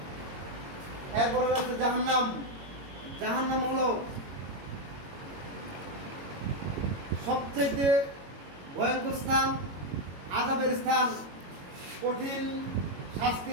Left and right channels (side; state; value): left; late; 22 ms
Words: এরপরে আছে জাহান্নাম। জাহান্নাম হলো সবচেয়ে ভয়ঙ্কর স্থান, আযাবের স্থান, কঠিন